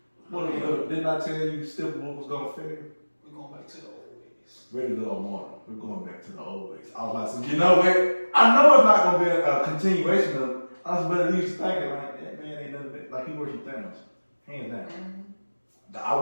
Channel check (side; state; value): both; inverted; correlation -1.00